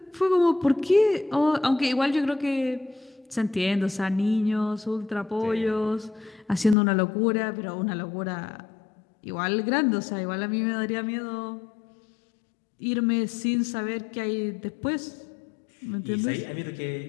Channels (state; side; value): drops out; right; at 6.8 s